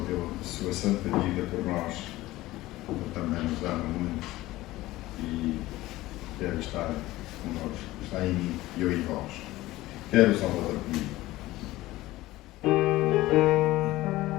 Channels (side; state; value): right; quieter; 17.5 dB